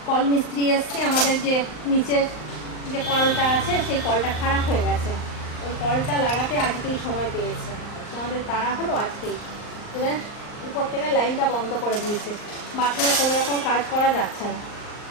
কল মিস্ত্রি এসছে, আমাদের যে নিচের যে কলটা আছে সেই কলটা খারাপ হয়ে গেছে, ওই কলটা লাগাতে আজকেই সময় পেয়েছে। আমাদের তাড়া হলো আজকেই। এবার উপর থেকে লাইনটা বন্ধ করে দিয়েছে, বাথরুমে কোনো রকম কাজ করা যাচ্ছে না,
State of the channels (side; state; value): right; late; 39 ms